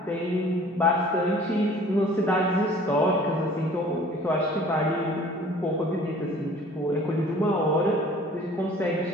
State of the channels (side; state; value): both; normal; correlation 0.50